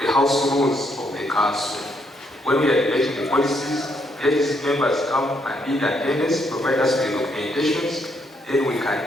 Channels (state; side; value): normal; both; correlation 0.74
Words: house rules of the council. When we are debating the policies, let these members come and be in attendance, provide us with documentations, then we